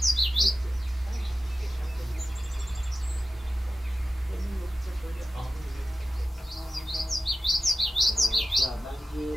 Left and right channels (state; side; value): normal; both; correlation 0.93